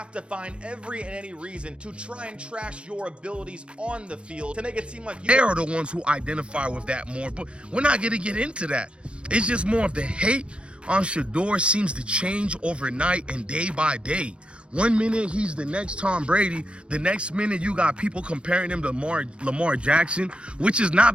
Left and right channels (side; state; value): left; late; 0.058 ms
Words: to find every and any reason to try and trash your abilities on the field to make it seem like you they are the ones who identify with that more. But we're not gonna get into that. It's just more of the hate on Shedeur seems to change overnight and day by day. 1 minute he's the next Tom Brady, the next minute you got people comparing him to Lamar Jackson, which is